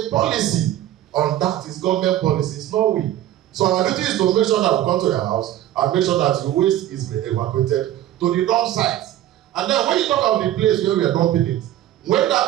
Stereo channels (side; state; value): left; quieter; 13.0 dB